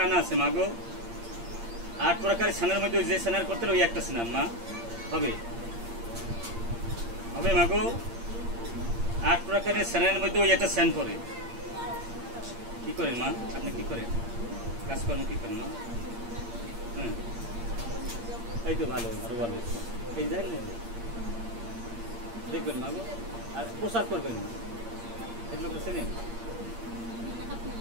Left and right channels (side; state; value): left; late; 8.7 ms